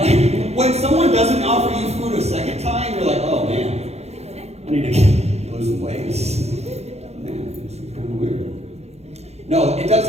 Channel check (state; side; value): late; left; 0.31 ms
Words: when someone doesn't offer you food a second time, you're like, oh man, I need to lose some weight. Man, this is kind of weird. No, it does